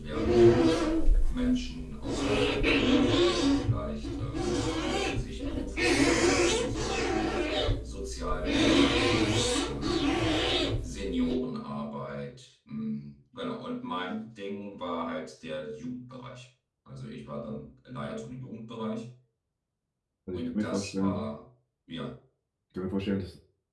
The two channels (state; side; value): identical; both; correlation 1.00